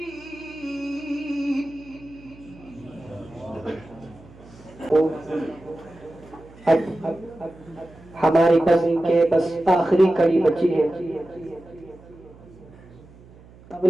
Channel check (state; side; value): noise; right; hum, 23 dB below the sound